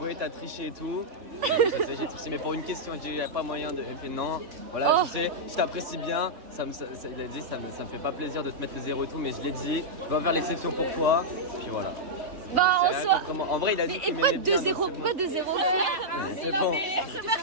t'as triché et tout. J'ai triché mais pour une question, j'ai dit y a pas moyen de. J'ai fait non. Voilà, tu sais, je t'apprécie bien. Il a dit ça me fait pas plaisir de te mettre le 0 et tout, mais je l'ai dit, je vais faire l'exception pour toi. Puis voilà. Bah en soi. En vrai, il a dit. Et pourquoi 2-0? Pourquoi 2-0? C'est bon. C'est ça,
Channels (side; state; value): left; late; 3.4 ms